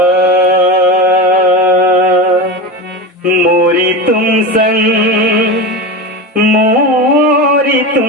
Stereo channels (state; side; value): normal; both; correlation 0.22